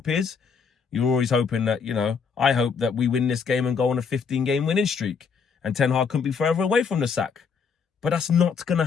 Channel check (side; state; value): right; quieter; 5.9 dB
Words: is, you're always hoping that, you know, I hope that we win this game and go on a 15-game winning streak and Ten Hag couldn't be further away from the sack. But that's not going